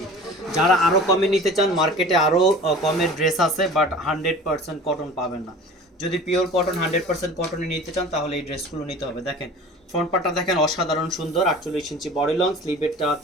যারা আরও কমে নিতে চান, মার্কেটে আরও কমের ড্রেস আছে, বাট 100% কটন পাবেন না। যদি পিওর কটন 100% কটনে নিতে চান তাহলে এই ড্রেসগুলো নিতে হবে। দেখেন ফ্রন্ট পার্টটা দেখেন অসাধারণ সুন্দর, 48 ইঞ্চি বডি লং, স্লিভেরটা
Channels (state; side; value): normal; both; correlation 0.41